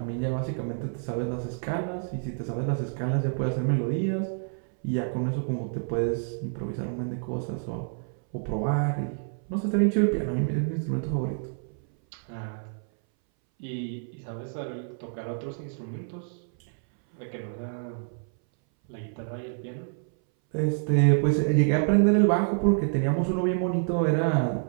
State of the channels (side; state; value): left; silent; 59 dB below the other